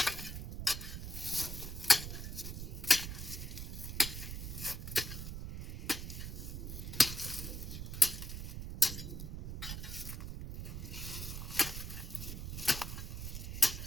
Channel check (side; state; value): right; noise; rumble, 5 dB below the sound